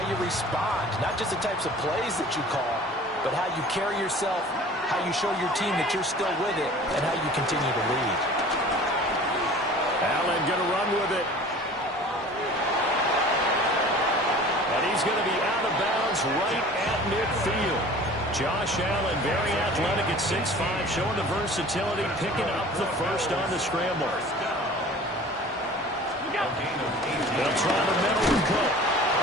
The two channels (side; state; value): both; normal; correlation 0.44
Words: you respond, not just the types of plays that you call, but how you carry yourself, how you show your team that you're still with it, and how you continue to lead. Allen going to run with it. And he's going to be out of bounds right at midfield. Josh Allen, very athletic at 6'5", showing the versatility, picking up the first on the scramble. They'll try the middle with Cook.